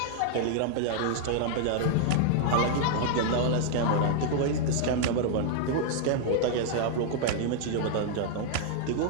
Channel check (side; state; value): both; different; correlation -0.01